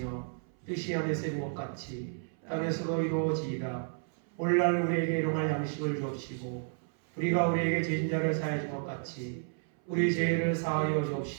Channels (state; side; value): silent; left; 57 dB below the other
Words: 뜻이 하늘에서 이룬 것 같이 땅에서도 이루어지이다. 오늘날 우리에게 일용할 양식을 주옵시고 우리가 우리에게 죄진 자를 사하여 준 것 같이 우리 죄를 사하여